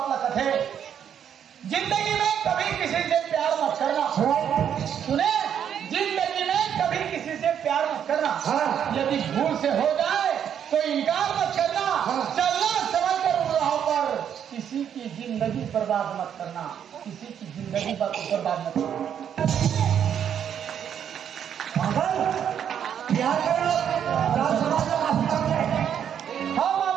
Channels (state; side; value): quieter; left; 8.8 dB